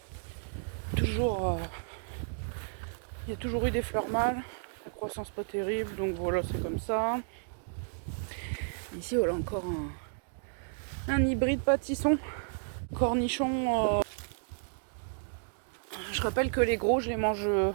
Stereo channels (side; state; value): left; silent; digital silence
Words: toujours, il y a toujours eu des fleurs mâles. La croissance pas terrible, donc voilà, c'est comme ça. Ici, voilà encore un hybride pâtisson. Cornichon. Je rappelle que les gros, je les mange